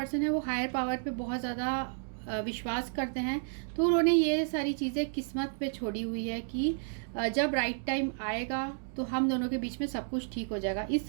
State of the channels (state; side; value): silent; left; digital silence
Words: है वो हायर पावर पे बहुत ज़्यादा विश्वास करते हैं। तो उन्होंने ये सारी चीज़ें किस्मत पे छोड़ी हुई है कि जब राइट टाइम आएगा तो हम दोनों के बीच में सब कुछ ठीक हो जाएगा। इस